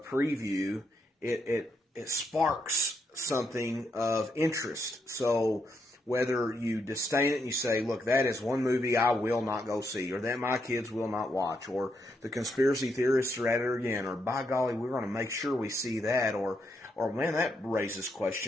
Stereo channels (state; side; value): normal; both; correlation 0.79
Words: it sparks something of interest. So whether you disdain it and you say, look, that is one movie I will not go see, or that my kids will not watch, or the conspiracy theorists are at it again, or by golly, we're going to make sure we see that, or man, that raises